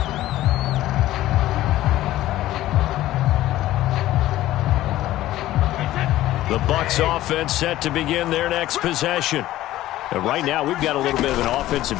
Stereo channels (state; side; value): quieter; right; 15.0 dB